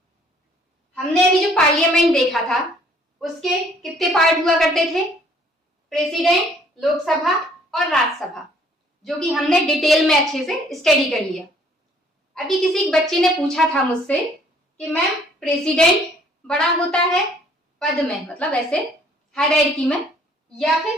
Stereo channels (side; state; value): both; normal; correlation 0.60